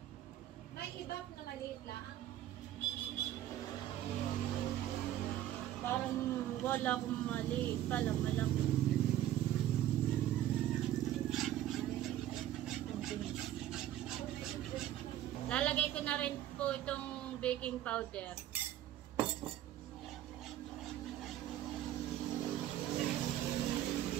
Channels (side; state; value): left; quieter; 12.6 dB